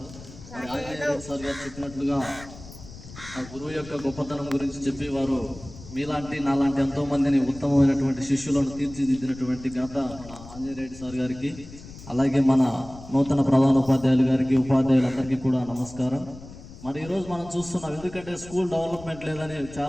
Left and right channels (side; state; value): left; noise; rumble, 16 dB below the sound